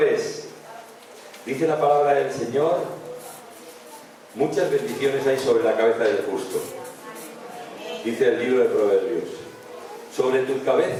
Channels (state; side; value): identical; both; correlation 1.00